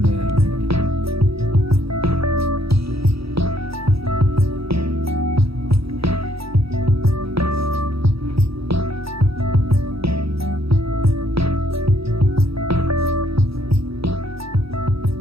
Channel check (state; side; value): late; left; 0.77 ms